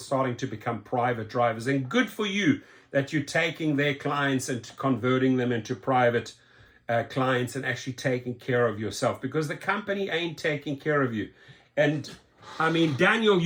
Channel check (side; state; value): both; identical; correlation 1.00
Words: to become private drivers. And good for you that you're taking their clients and converting them into private clients and actually taking care of yourself, because the company ain't taking care of you. And Daniel,